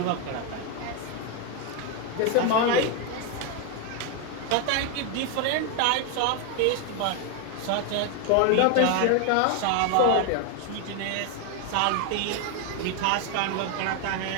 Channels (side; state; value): both; different; correlation 0.01